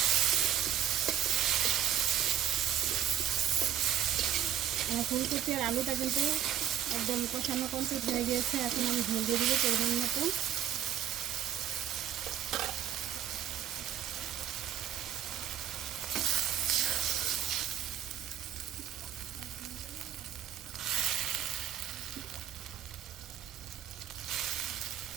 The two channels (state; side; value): quieter; left; 10.3 dB